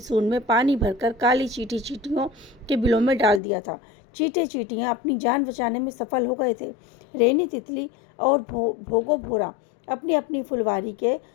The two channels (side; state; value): right; drops out; at 3.4 s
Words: में पानी भरकर काली चींटी चींटियों के बिलों में डाल दिया था। चींटे चींटियां अपनी जान बचाने में सफल हो गए थे। रेनी तितली और भोगो भोरा अपनी अपनी फुलवारी के